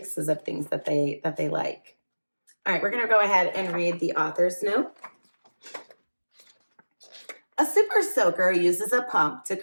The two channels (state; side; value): inverted; both; correlation -1.00